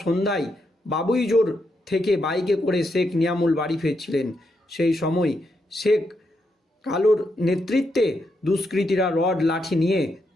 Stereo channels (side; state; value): both; normal; correlation 0.81